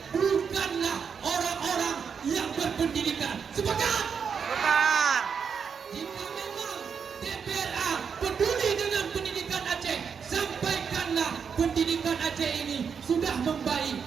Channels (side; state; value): left; quieter; 6.5 dB